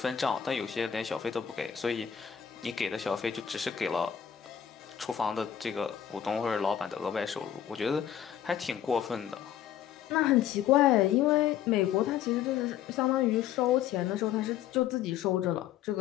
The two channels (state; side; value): quieter; right; 9.7 dB